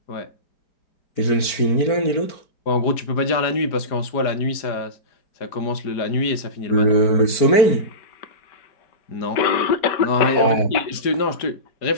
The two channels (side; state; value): right; late; 4.5 ms